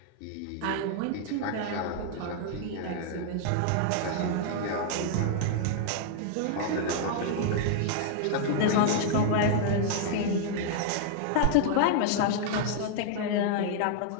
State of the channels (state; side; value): different; both; correlation -0.01